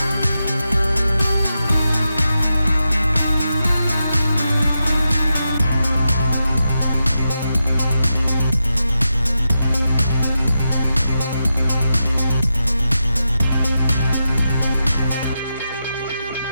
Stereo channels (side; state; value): both; inverted; correlation -0.87